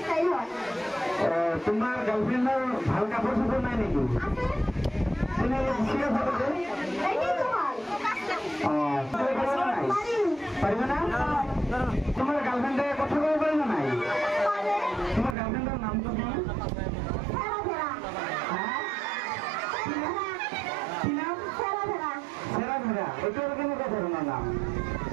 হয় তোমার গার্লফ্রেন্ডের ভালো কাপড় সাপড় নাই নাকি তুমি ছিল ফটোতে এই যে তোমার পারবে না তোমার গার্লফ্রেন্ডের কথা বলবে না নাই তোমার গার্লফ্রেন্ডের নাম তো কি ওইটার কেন কথা না নাম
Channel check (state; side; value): drops out; left; at 15.4 s